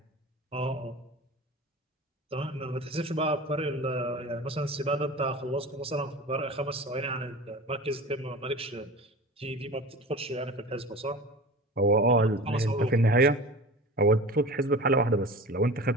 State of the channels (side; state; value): both; normal; correlation 0.35